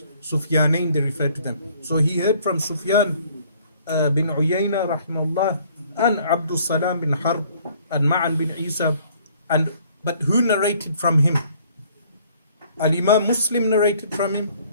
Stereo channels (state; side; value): inverted; both; correlation -0.59